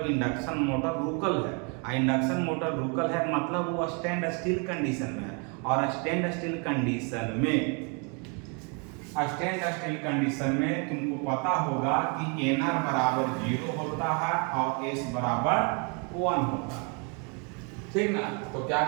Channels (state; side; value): quieter; left; 35.3 dB